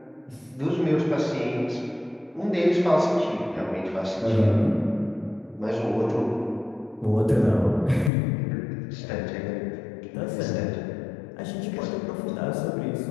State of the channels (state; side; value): drops out; right; at 8.1 s